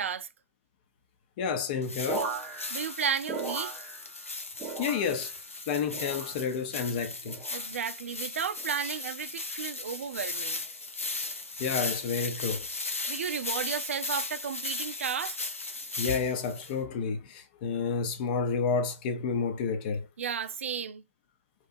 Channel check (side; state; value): both; normal; correlation -0.17